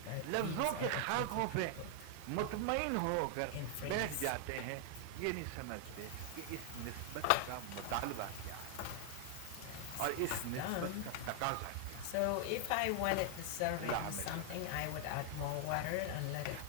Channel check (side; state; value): both; different; correlation 0.00